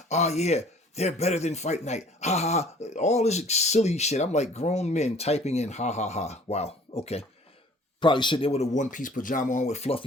Oh yeah, they're better than Fight Night. Ha ha. All this silly shit. I'm like grown men typing in ha ha ha. Wow. Okay. Probably sitting there with a one-piece pajama on with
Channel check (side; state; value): both; normal; correlation 0.52